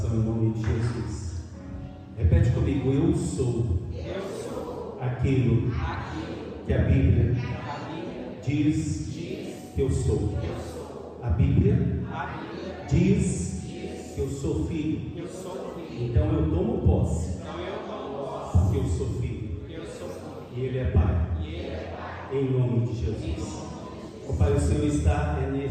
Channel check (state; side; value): identical; both; correlation 1.00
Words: em nome de Jesus. Repete comigo: eu sou aquilo que a Bíblia diz que eu sou. A Bíblia diz que eu sou filho. Então eu tomo posse, porque eu sou filho. E Ele é Pai. Em nome de Jesus. Ó Pai, o Senhor está